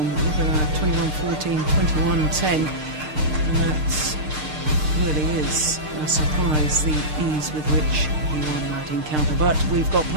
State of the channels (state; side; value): late; left; 6.6 ms